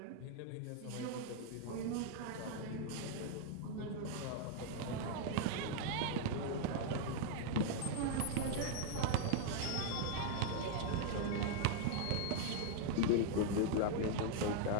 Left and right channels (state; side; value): different; both; correlation 0.00